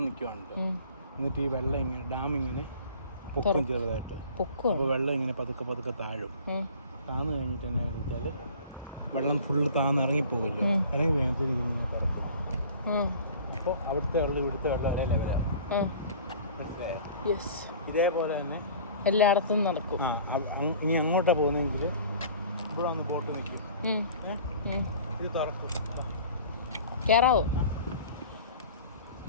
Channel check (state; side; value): inverted; both; correlation -0.45